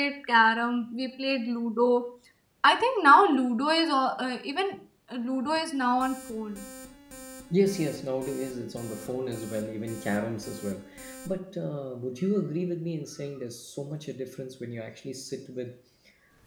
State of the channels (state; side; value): identical; both; correlation 1.00